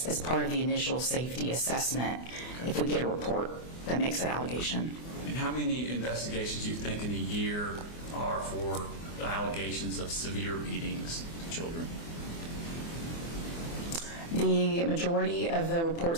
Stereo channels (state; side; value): late; right; 24 ms